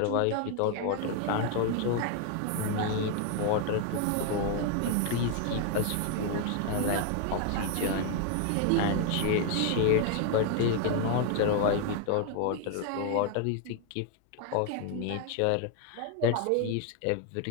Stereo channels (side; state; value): both; different; correlation 0.00